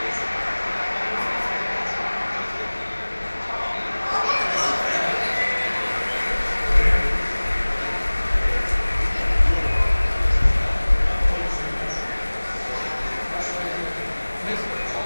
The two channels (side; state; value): both; inverted; correlation -1.00